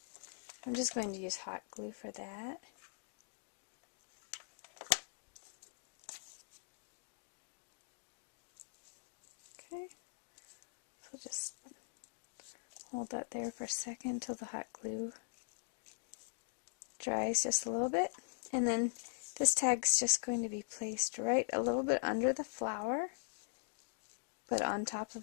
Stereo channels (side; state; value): right; silent; digital silence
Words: I'm just going to use hot glue for that. Hold that there for a second until the hot glue dries just a little bit. And then this tag's just going to be placed right a little bit under the flower, but on top